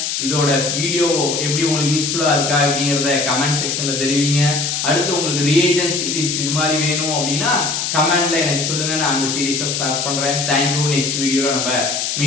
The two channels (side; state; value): left; noise; hiss, 1 dB below the sound